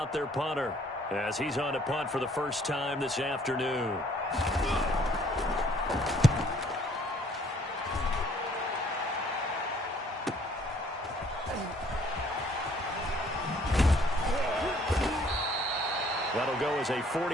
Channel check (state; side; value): normal; both; correlation 0.61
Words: their punter as he's on to punt for the first time this afternoon. That'll go as a